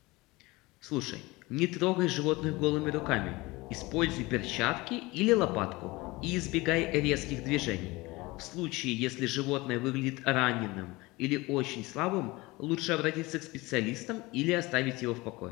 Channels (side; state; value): right; quieter; 22.1 dB